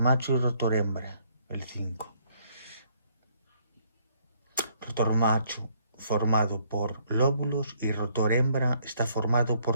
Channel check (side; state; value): both; inverted; correlation -0.67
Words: y rotor hembra, el 5. Rotor macho formado por lóbulos y rotor hembra está formado